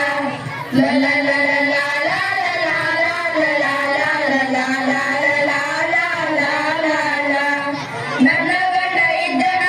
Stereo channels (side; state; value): both; identical; correlation 1.00